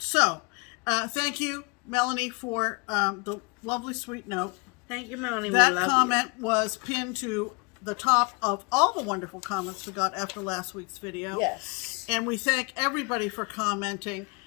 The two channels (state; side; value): quieter; right; 30.3 dB